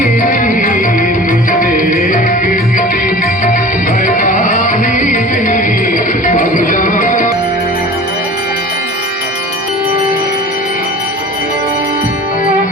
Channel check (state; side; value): normal; both; correlation 0.39